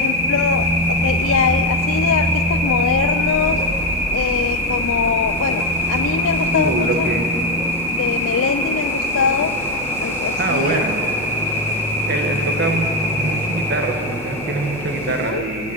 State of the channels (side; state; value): left; noise; hum, 20 dB below the sound